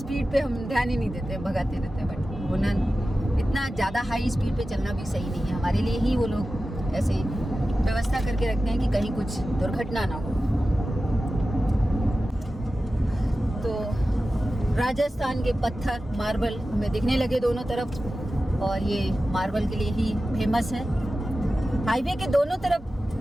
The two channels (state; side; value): normal; both; correlation 0.94